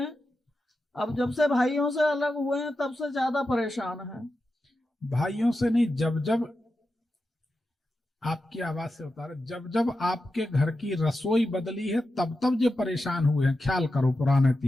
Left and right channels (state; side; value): normal; both; correlation 0.90